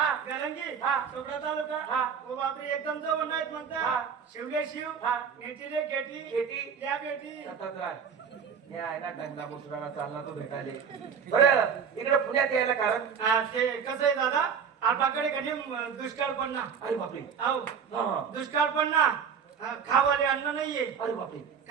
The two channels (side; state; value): left; quieter; 6.9 dB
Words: गलंगी. हा. चोपडा तालुका. हा. ओ बापरे, एकदम जवळ नाहीत मग त्या. हा. शिवले शिव. हा. नेटी रे केटी. केटी. त्या बेटी. सतत राह. या आहे ना गंगा मुसराला चालला तो भेटाले. बरं इकडे पुण्यात यायला कारण? ते कसं आहे दादा, आपल्याकडे कधी दुष्काळ पडणार. अरे बापरे. हो हा. दुष्काळ पडणार. खावाले अन्न नाहीये. अरे बापरे.